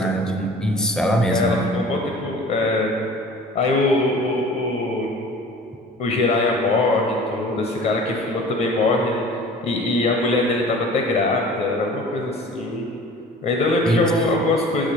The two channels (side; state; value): both; normal; correlation 0.44